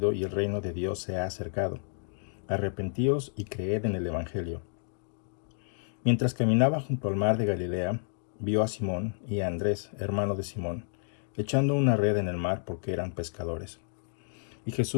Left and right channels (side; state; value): right; silent; digital silence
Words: y el reino de Dios se ha acercado. Arrepentíos y creed en el Evangelio. Mientras caminaba junto al mar de Galilea, vio a Simón y a Andrés, hermano de Simón, echando una red en el mar porque eran pescadores. Y